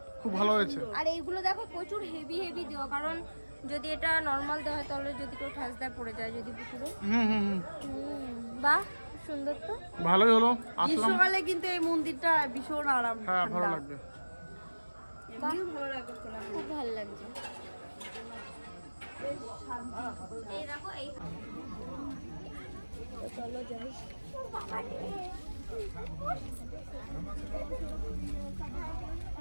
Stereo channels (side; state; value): both; inverted; correlation -1.00